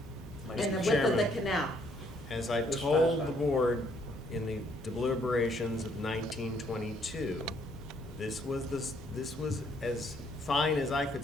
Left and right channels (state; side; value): normal; both; correlation 0.67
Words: Like And the Mr. width of the Chairman. canal. As I This told fast the time. board in the deliberations of 1922, this was as fine as I could